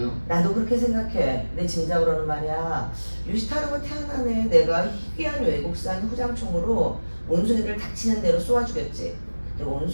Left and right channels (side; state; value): both; inverted; correlation -1.00